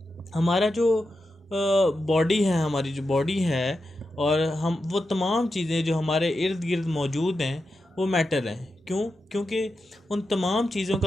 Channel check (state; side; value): normal; both; correlation 0.89